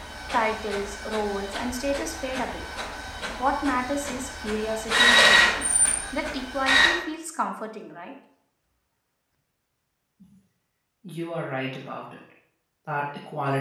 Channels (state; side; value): identical; both; correlation 1.00